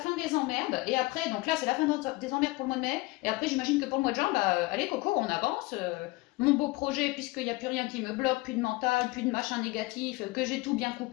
des emmerdes, et après, donc là c'est la fin des emmerdes pour le mois de mai, et après j'imagine que pour le mois de juin, bah allez Coco, on avance, mon beau projet, puisqu'il n'y a plus rien qui me bloque, plus de mental, plus de machin négatif, que j'ai tout bien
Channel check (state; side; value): quieter; right; 22.6 dB